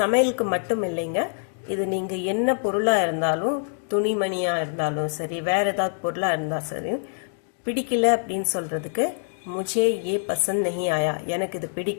சமையலுக்கு மட்டும் இல்லைங்க, இது நீங்கள் என்ன பொருளாக இருந்தாலும், துணிமணியாக இருந்தாலும் சரி, வேறு ஏதாவது பொருளாக இருந்தால் சரி, பிடிக்கல அப்படின்னு சொல்கிறதுக்கு मुझे ये पसंद नहीं आया, எனக்கு இது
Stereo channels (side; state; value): right; silent; digital silence